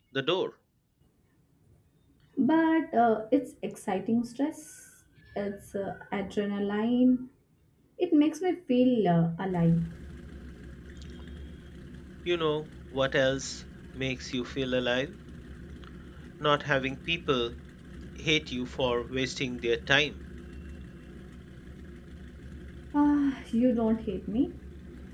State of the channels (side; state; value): both; identical; correlation 1.00